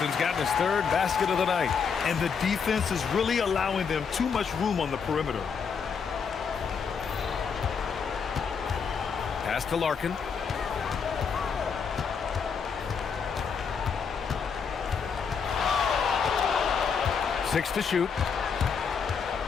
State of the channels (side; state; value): right; quieter; 6.1 dB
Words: gotten his third basket of the night. And the defense is really allowing them too much room on the perimeter. Pass to Larkin. Six to shoot.